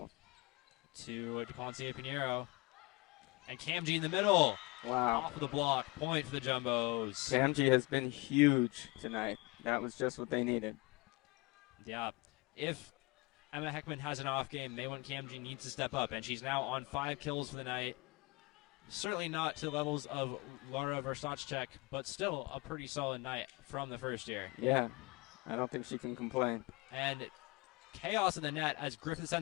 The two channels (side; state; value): right; quieter; 25.1 dB